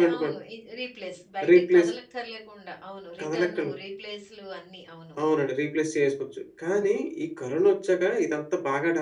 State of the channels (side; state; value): both; identical; correlation 1.00